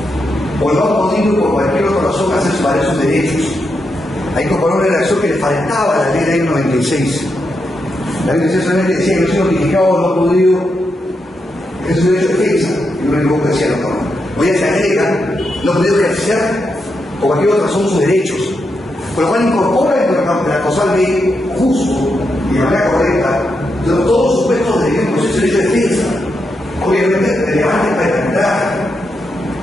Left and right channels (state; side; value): normal; both; correlation 0.84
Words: o no ha podido por cualquier otra razón hacer valer su sus derechos. Ha incorporado una redacción que le faltaba a la ley del año 96. La ley 96 solamente decía que no se notificaba no podido, es su derecho de defensa, y lo único que decía la norma. Hoy ya se agrega, no podido ejercer por cualquier otra razón sus derechos, por lo cual incorpora en la causal ley justo y de manera correcta todos los supuestos de un proceso de derecho de defensa, obviamente relevante para el arbitraje.